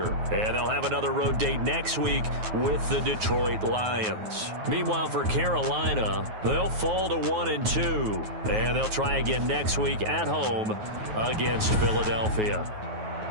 And they'll have another road date next week with the Detroit Lions. Meanwhile, for Carolina, they'll fall to 1-2. And they'll try again next week at home against Philadelphia.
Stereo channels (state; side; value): late; left; 9.3 ms